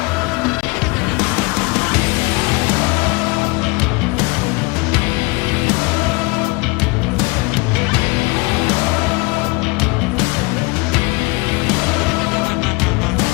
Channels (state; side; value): quieter; right; 26.4 dB